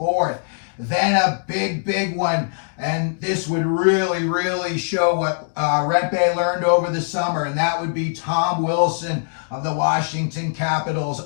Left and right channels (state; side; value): silent; right; digital silence